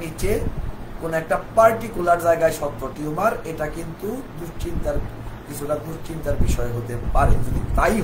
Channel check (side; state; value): both; identical; correlation 1.00